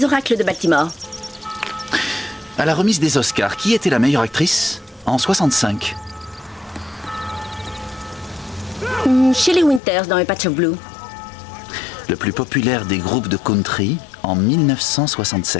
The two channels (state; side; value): drops out; right; at 9.8 s